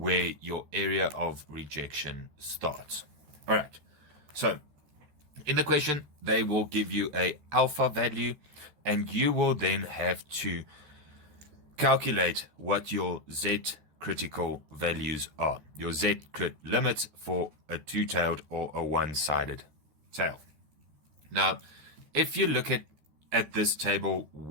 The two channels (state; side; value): late; left; 14 ms